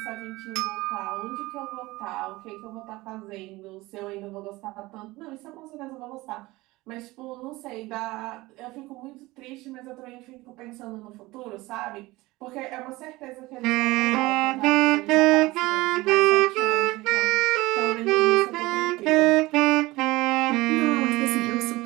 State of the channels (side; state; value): left; quieter; 20.3 dB